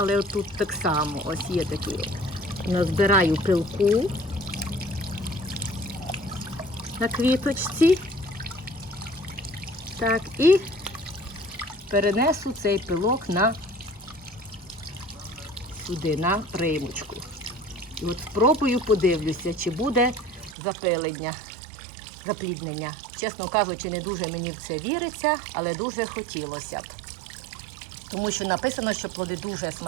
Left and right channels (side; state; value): left; drops out; at 20.6 s